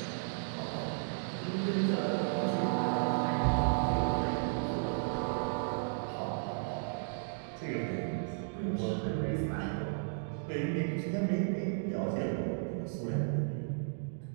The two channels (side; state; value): left; silent; digital silence